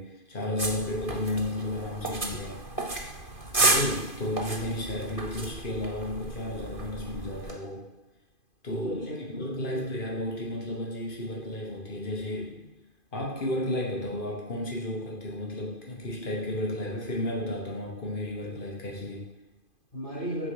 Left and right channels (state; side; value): late; right; 2.5 ms